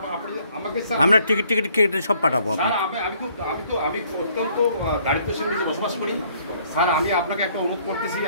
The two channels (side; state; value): both; inverted; correlation -0.63